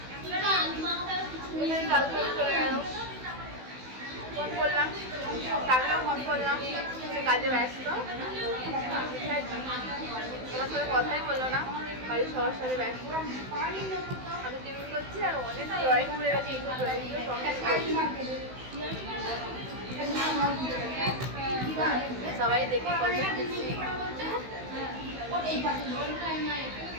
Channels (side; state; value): left; late; 16 ms